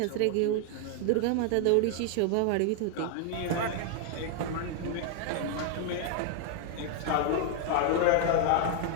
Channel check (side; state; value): both; different; correlation 0.00